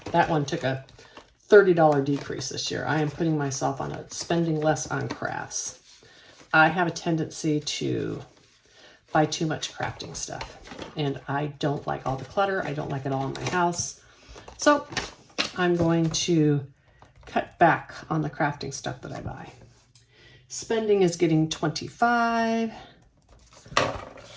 That one took a $30 decrease this year. I am putting myself on spending less on crafts. I have a tendency to buy too much crafting stuff, and I don't like all the clutter. I don't like it all in my house. So I'm going to cut back on the crafting stuff that I buy. Spending is getting 25,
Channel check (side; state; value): both; identical; correlation 1.00